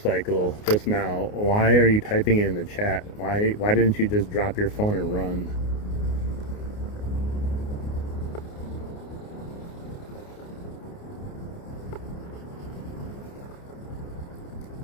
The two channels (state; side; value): late; right; 29 ms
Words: just now, why are you typing it in the chat? Why didn't you just drop your phone and run?